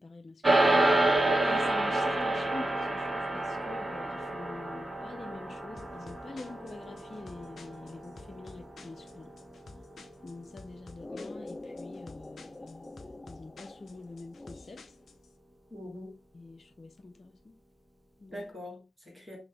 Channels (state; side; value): normal; both; correlation 0.90